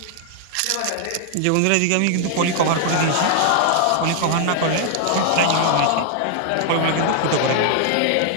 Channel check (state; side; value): different; both; correlation 0.00